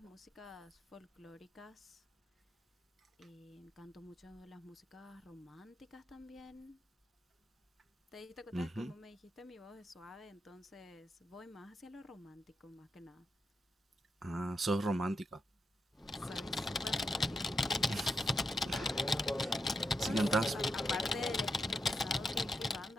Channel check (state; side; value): normal; both; correlation 0.83